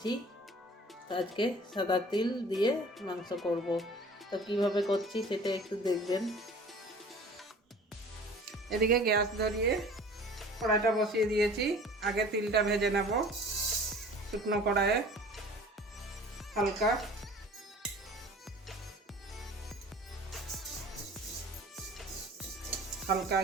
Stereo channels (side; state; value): both; normal; correlation 0.46